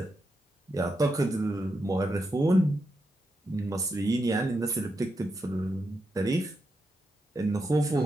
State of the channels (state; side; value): normal; both; correlation 0.85